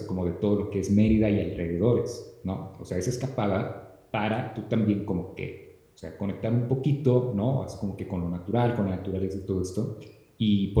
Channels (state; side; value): identical; both; correlation 1.00